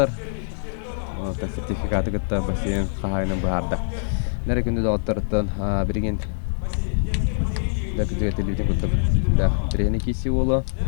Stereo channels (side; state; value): right; silent; 63 dB below the other